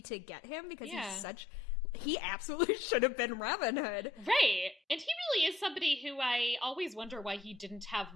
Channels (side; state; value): right; quieter; 3.4 dB